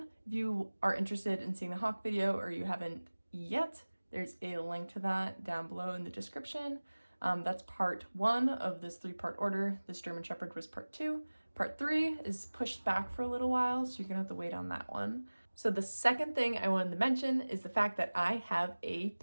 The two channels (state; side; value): inverted; both; correlation -1.00